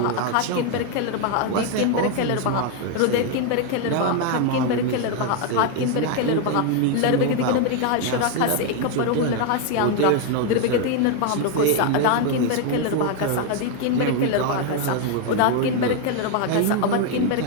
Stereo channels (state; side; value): different; both; correlation 0.01